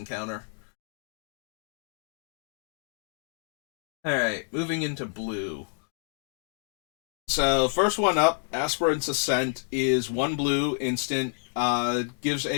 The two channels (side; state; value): right; quieter; 35.9 dB